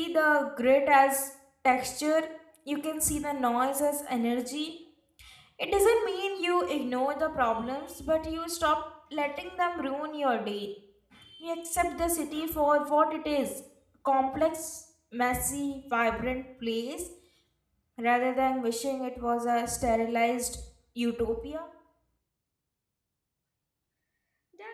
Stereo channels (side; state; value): both; identical; correlation 1.00